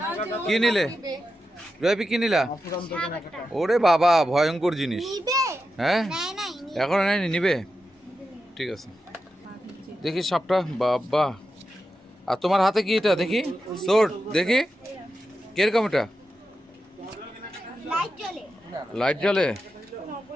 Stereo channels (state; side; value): normal; both; correlation 0.89